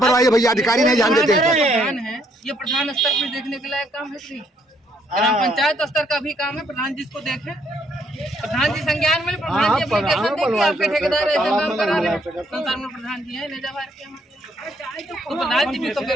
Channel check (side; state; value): both; normal; correlation 0.70